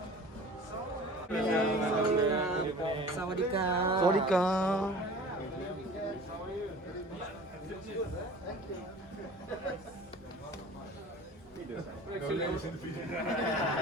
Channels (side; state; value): both; normal; correlation 0.43